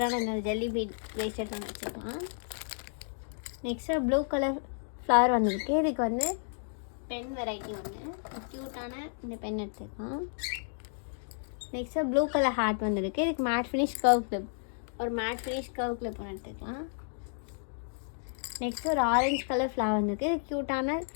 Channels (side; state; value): right; silent; digital silence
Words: இந்த ஜெல்லி பீட் பிரேஸ்லெட் ஒன்று வச்சுக்கலாம். நெக்ஸ்ட்டு ப்ளூ கலர் ஃப்ளவர் வந்துருக்கு. இதுக்கு வந்து பென் வெரைட்டி ஒன்று க்யூட்டான இந்த பென் எடுத்துக்கலாம். நெக்ஸ்ட்டு ப்ளூ கலர் ஹார்ட் வந்துருக்கு. இதுக்கு மேட் ஃபினிஷ் கர்வ் கிளிப், ஒரு மேட் ஃபினிஷ் கர்வ் கிளிப் ஒன்று எடுத்துக்கலாம். நெக்ஸ்ட்டு ஒரு ஆரஞ்சு கலர் ஃப்ளவர் வந்துருக்கு. இது க்யூட்டான